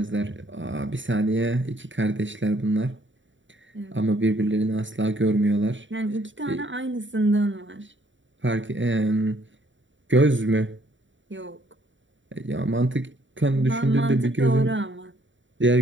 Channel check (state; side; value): late; left; 0.55 ms